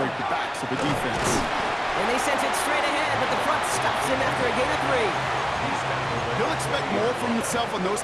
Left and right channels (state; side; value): identical; both; correlation 1.00